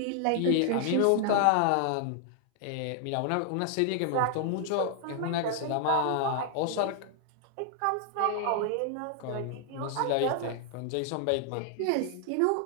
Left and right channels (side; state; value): both; different; correlation 0.00